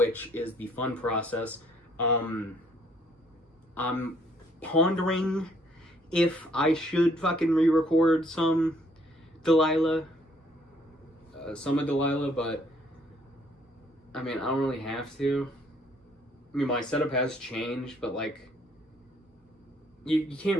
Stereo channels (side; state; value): both; normal; correlation 0.64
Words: is the fun process. I'm pondering if I should fucking re-record some Delilah, but I mean, I don't really have to. I mean, my setup has changed, but like, you can't